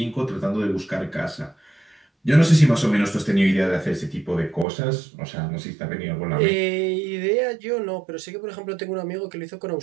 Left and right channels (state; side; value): drops out; left; at 4.7 s